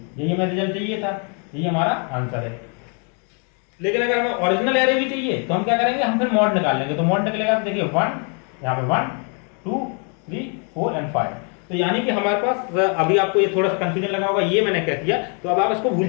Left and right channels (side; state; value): right; quieter; 39.2 dB